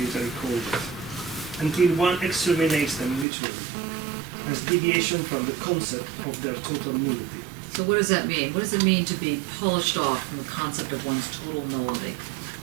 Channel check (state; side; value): drops out; left; at 3.2 s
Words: called it, until one exterminates them literally, as deviation from the concept of their total nullity. So what does that mean? What does it mean to be polished off from the concept of one's total nullity?